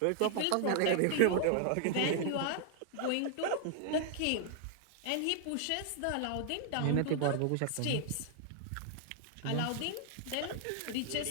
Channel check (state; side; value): different; both; correlation -0.01